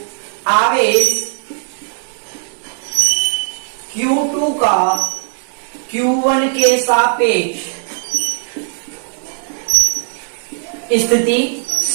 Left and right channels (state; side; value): silent; left; digital silence